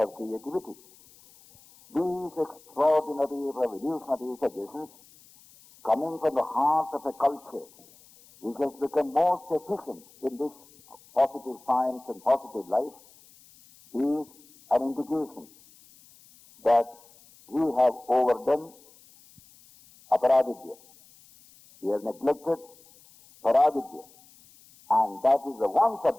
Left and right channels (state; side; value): noise; left; hiss, 26 dB below the sound